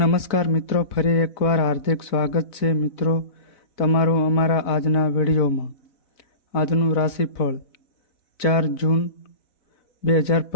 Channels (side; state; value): right; late; 4.0 ms